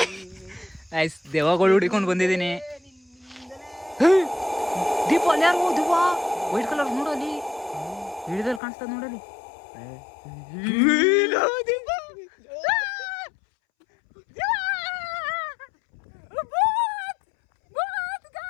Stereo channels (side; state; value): right; drops out; at 8.6 s